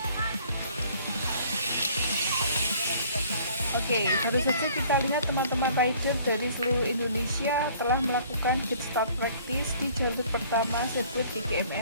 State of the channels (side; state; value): both; inverted; correlation -0.55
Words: Oke, baru saja kita lihat teman-teman rider dari seluruh Indonesia telah melakukan pit start practice di jalur pertama sirkuit